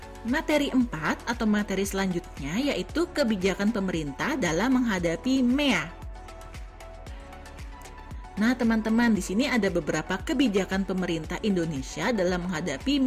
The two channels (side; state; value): both; identical; correlation 1.00